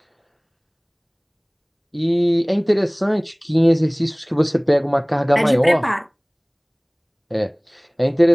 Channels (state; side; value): identical; both; correlation 1.00